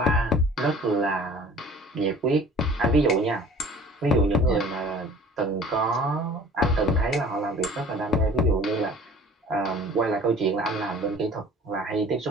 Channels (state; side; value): normal; both; correlation 0.47